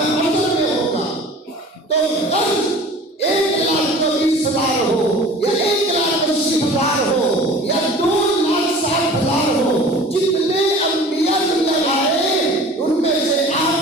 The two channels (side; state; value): both; normal; correlation 0.43